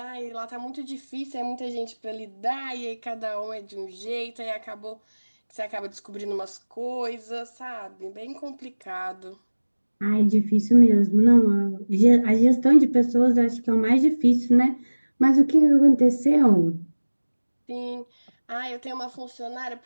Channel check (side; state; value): both; inverted; correlation -1.00